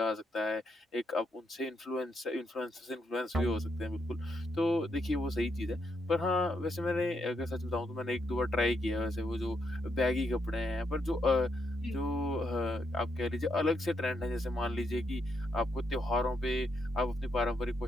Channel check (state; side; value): normal; both; correlation 0.79